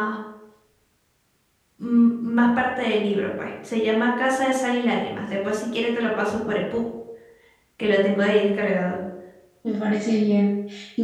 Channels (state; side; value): identical; both; correlation 1.00